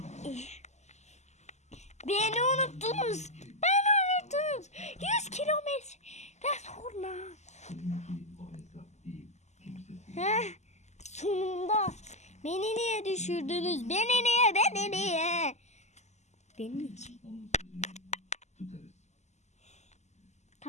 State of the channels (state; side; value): late; right; 0.33 ms